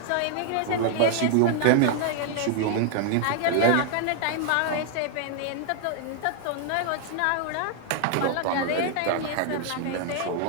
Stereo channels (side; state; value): both; different; correlation 0.00